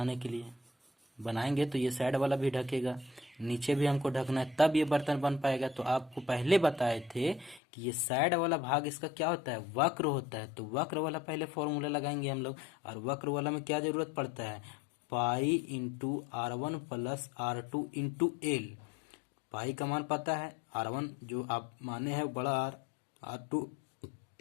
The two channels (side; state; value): right; drops out; at 7.6 s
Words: के लिए। बनाएंगे तो ये साइड वाला भी ढकेगा, नीचे भी हमको ढकना है, तब ये बर्तन बन पाएगा। तो आपको पहले बताए थे कि ये साइड वाला भाग इसका क्या होता है, वक्र होता है। तो वक्र वाला पहले फॉर्मूला लगाएंगे हम लोग। और वक्र वाला में क्या जरूरत पड़ता है, pi into R1 plus R2 into L. Pi का मान पता है, R1 जो आप माने हैं बड़ा आर, R2